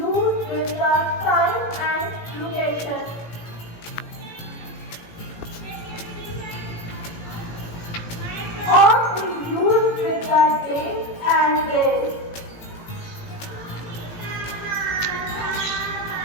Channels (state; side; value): late; right; 18 ms